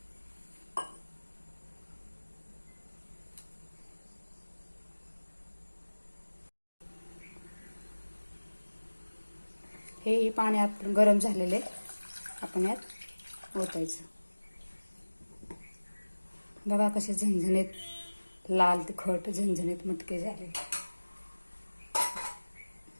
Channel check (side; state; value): both; inverted; correlation -1.00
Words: हे पाणी आपण गरम झालेले आपण यात ओतायचं. बघा कसे झणझणीत लाल तिखट झणझणीत मटके झाले.